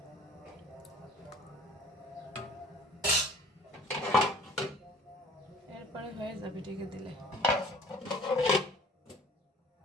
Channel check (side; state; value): both; normal; correlation 0.49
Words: এরপরে হয়ে যাবে ঢেকে দিলে।